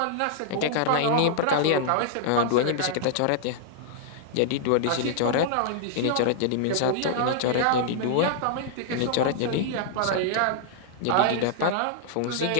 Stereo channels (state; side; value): different; both; correlation -0.01